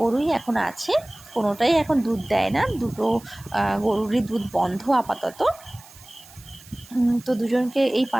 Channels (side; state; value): right; noise; hiss, 22 dB below the sound